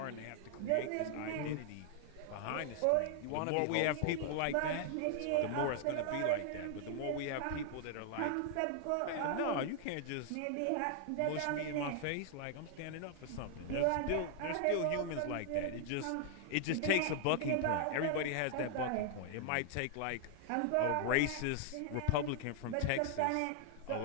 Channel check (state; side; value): different; both; correlation 0.00